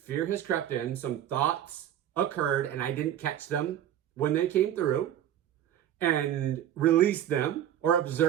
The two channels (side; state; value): left; quieter; 10.9 dB